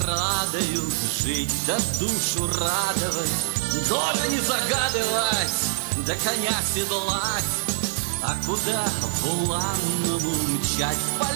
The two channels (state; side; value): silent; left; 62 dB below the other